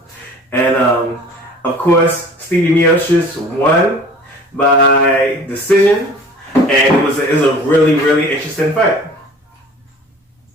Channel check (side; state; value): both; normal; correlation 0.46